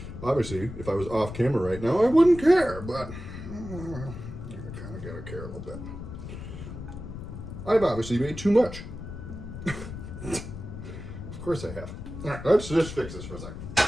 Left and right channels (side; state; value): left; noise; rumble, 10 dB below the sound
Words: Obviously, if I was off camera right now, I wouldn't care, but you kind of gotta care a little bit. I've obviously made too much. Of course I have. All right, let's just fix this for a second.